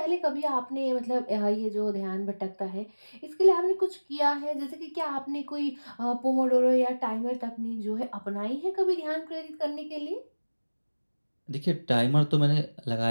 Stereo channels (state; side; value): inverted; both; correlation -1.00